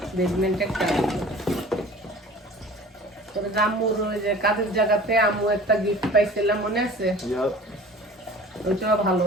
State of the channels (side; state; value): both; normal; correlation 0.44